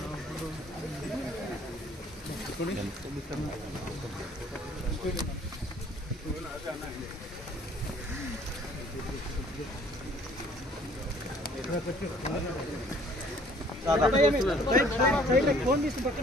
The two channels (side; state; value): both; normal; correlation 0.57